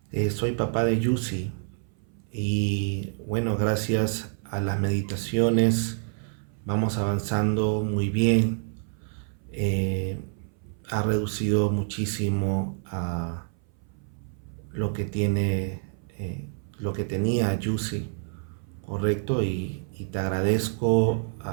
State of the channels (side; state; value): left; silent; 58 dB below the other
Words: Soy papá de Yusi y bueno, gracias a las meditaciones vamos avanzando muy bien. Eh, Ha reducido muchísimo a lo que tiene, lo que tenía Yusi, correcto, y te agradezco